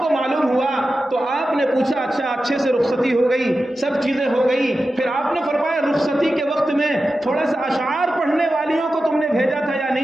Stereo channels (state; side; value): normal; both; correlation 0.92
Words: معلوم ہوا تو آپ نے پوچھا اچھا اچھے سے رخصتی ہو گئی، سب چیزیں ہو گئی. پھر آپ نے فرمایا رخصتی کے وقت میں تھوڑا سا اشعار پڑھنے والیوں کو تم نے بھیجا تھا یا